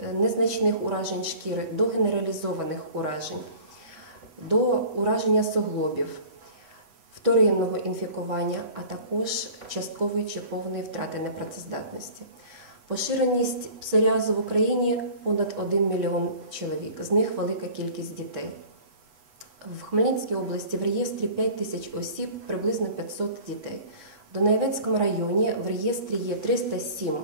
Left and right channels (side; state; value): left; late; 8.2 ms